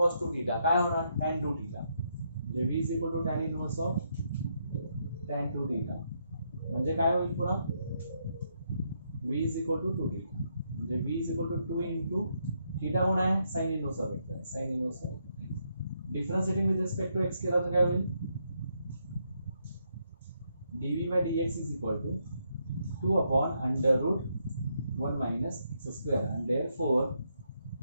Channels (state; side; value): inverted; both; correlation -0.77